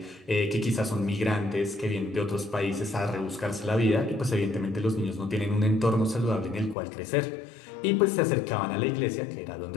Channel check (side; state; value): right; drops out; at 6.8 s